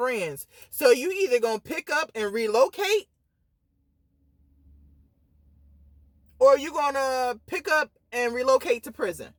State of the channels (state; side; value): identical; both; correlation 1.00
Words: So you either going to pick up and relocate, or you're going to pick up and relocate to prison.